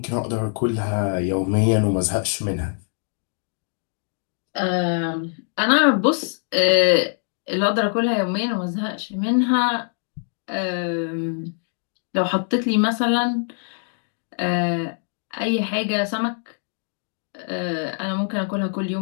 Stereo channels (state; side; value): silent; right; 59 dB below the other